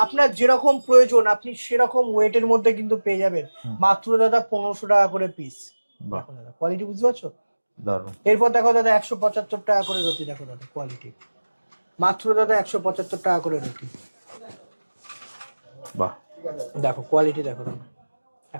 আপনার যেরকম প্রয়োজন আপনি সেরকম ওয়েটের মধ্যে কিন্তু পেয়ে যাবেন, মাত্র দাদা 1500 টাকা করে পিস। দেখো দাদা কোয়ালিটি বুঝতে পারছো? এরপর দেখো দাদা 175 টাকা করে রতি। দেখো দাদা কোয়ালিটি, মাত্র দাদা 175 টাকা করে রতি। দেখো কোয়ালিটি দেখো দাদা,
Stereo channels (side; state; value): both; inverted; correlation -1.00